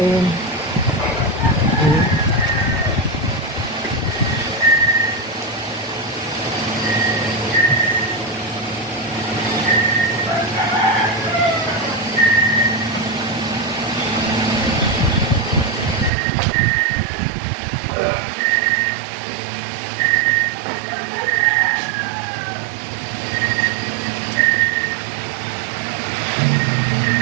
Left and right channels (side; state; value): left; drops out; at 16.1 s